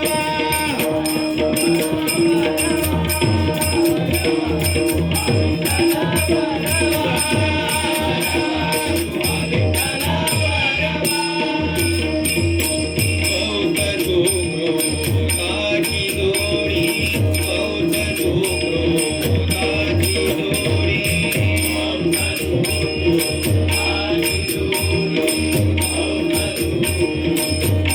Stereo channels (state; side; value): identical; both; correlation 1.00